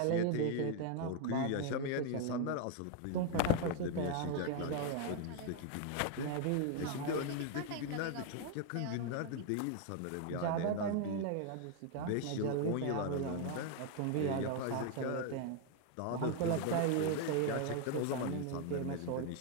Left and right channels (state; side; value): different; both; correlation 0.00